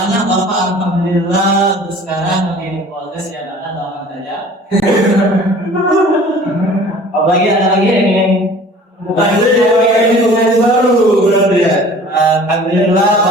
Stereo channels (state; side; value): normal; both; correlation 0.47